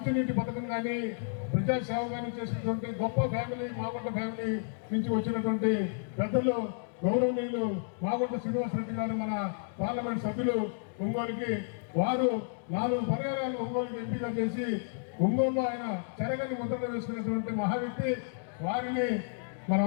పథకం కానీ ప్రజాసేవ కానీ చేసినటువంటి గొప్ప ఫ్యామిలీ మాగుంట ఫ్యామిలీ నుంచి వచ్చినటువంటి పెద్దలు గౌరవనీయులు మాగుంట శ్రీనివాసరెడ్డి గారు మన పార్లమెంట్ సభ్యులు ఒంగోలుకి వారు 4 పర్యాయాలు ఒంగోలుకి ఎంపిక చేసి ఒంగోలులో ఆయన చెరగని ముద్రలు వేసుకున్నటువంటి మహావ్యక్తి. వారిని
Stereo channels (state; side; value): silent; right; digital silence